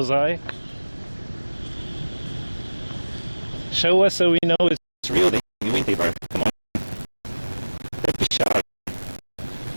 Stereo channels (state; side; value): inverted; both; correlation -1.00